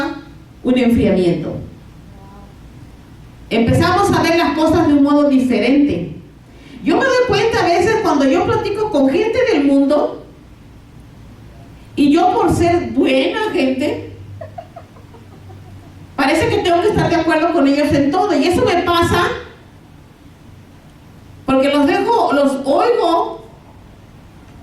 un enfriamiento. Empezamos a ver las cosas de un modo diferente. Yo me doy cuenta a veces cuando yo platico con gente del mundo, y yo por ser buena gente, parece que tengo que estar de acuerdo con ellos en todo, y eso me pasa porque los oigo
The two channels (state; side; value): identical; both; correlation 1.00